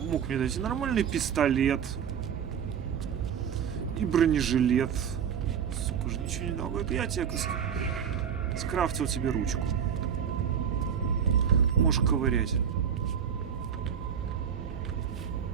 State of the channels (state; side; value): quieter; left; 8.0 dB